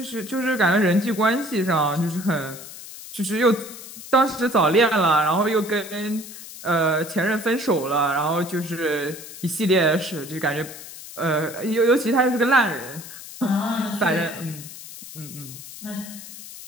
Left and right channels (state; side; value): noise; left; hiss, 14 dB below the sound